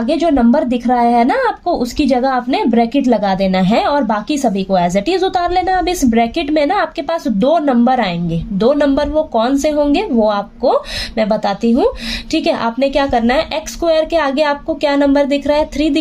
जो नंबर दिख रहा है ना आपको, उसकी जगह आपने ब्रैकेट लगा देना है और बाकी सभी को एज इट इज उतार लेना। अब इस ब्रैकेट में ना आपके पास 2 नंबर आएंगे। 2 नंबर वो कौन से होंगे वो आपको मैं बताती हूँ। ठीक है, आपने क्या करना है, एक्स स्क्वायर के आगे आपको क्या नंबर दिख रहा है, 3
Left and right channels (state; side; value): identical; both; correlation 1.00